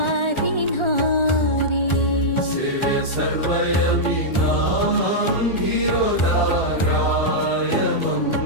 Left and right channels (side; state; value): right; late; 1.4 ms